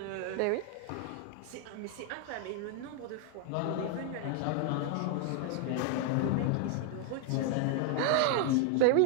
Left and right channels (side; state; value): both; different; correlation 0.00